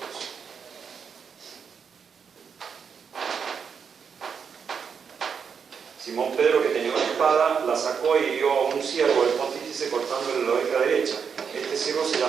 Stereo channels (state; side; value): quieter; left; 6.6 dB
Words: Simón Pedro, que tenía una espada, la sacó y hirió a un siervo del pontífice cortándole la oreja derecha. Este siervo se